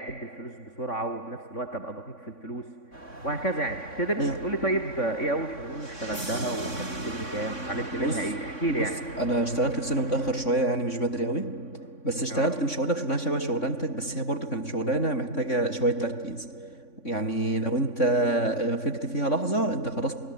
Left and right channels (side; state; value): right; late; 3.6 ms